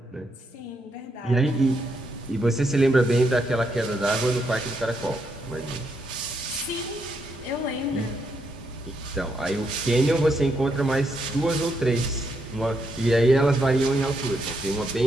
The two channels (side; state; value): both; normal; correlation 0.78